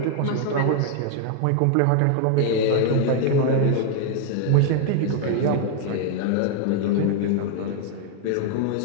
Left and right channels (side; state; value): both; different; correlation 0.00